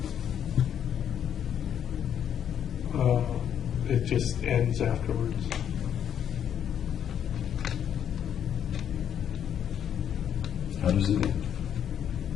It just ends afterwards. How does it end?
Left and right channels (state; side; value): quieter; right; 9.2 dB